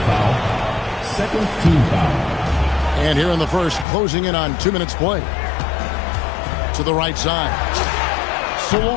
foul. Second team foul. And here in the first, closing in on 2 minutes play. To the right side. So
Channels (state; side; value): drops out; right; at 3.9 s